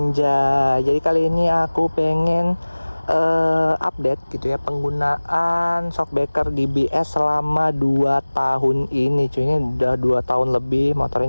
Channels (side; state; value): both; inverted; correlation -1.00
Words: Jadi kali ini aku pengen update gitu ya penggunaan shockbreaker DBS selama 2 tahun ini cuy. Ini udah 2 tahun lebih motor